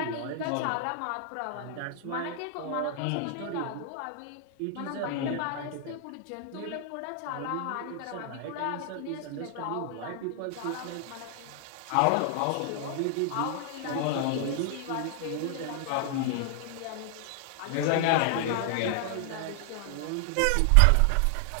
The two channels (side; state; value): both; different; correlation 0.00